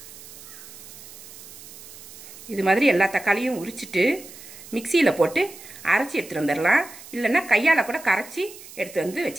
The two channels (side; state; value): right; noise; hiss, 17 dB below the sound